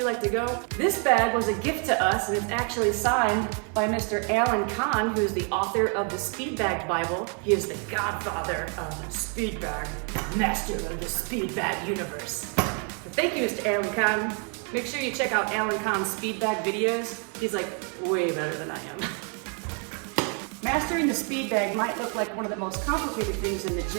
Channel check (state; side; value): quieter; left; 38.9 dB